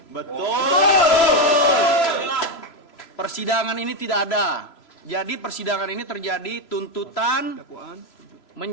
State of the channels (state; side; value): late; right; 3.0 ms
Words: Persidangan ini tidak ada. Jadi persidangan ini terjadi tuntutan